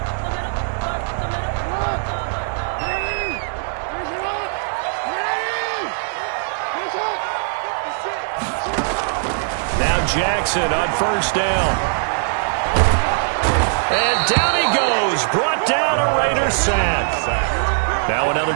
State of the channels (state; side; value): silent; left; digital silence